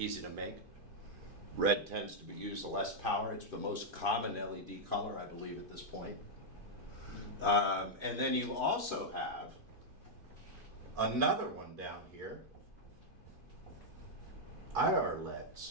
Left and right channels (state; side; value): late; left; 2.5 ms